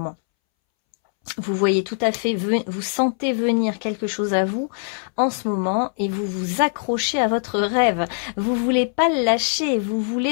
Vous voyez tout à fait, vous sentez venir quelque chose à vous en ce moment et vous vous accrochez à votre rêve. Vous voulez pas le lâcher, vous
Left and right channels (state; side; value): silent; right; 64 dB below the other